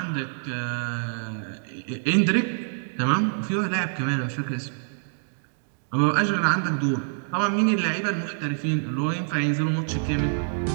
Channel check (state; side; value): silent; left; digital silence